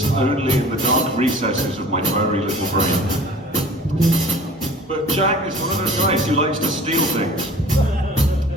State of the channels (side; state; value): both; normal; correlation 0.45